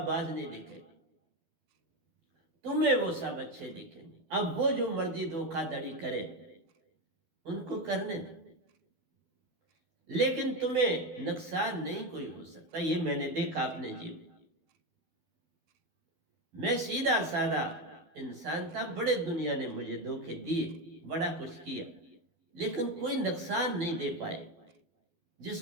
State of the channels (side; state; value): left; late; 12 ms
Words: नहीं दिखेगा, तुम्हें वो सब अच्छे दिखेंगे। अब वो जो मर्जी धोखाधड़ी करे उनको करने दो, लेकिन तुम्हें नुकसान नहीं कोई हो सकता। ये मैंने देखा अपने जीवन। मैं सीधा साधा इंसान था, बड़े दुनिया ने मुझे धोखे दिए, बड़ा कुछ किया, लेकिन कोई नुकसान नहीं दे पाए।